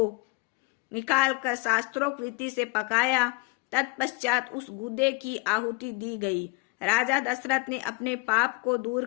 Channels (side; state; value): right; quieter; 28.0 dB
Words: निकालकर शास्त्रोक्त रीति से पकाया। तत्पश्चात उस गुदे की आहुति दी गई। राजा दशरथ ने अपने पाप को दूर